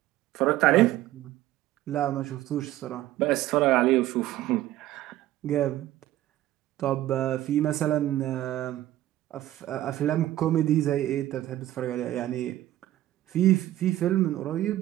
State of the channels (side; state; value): left; quieter; 14.4 dB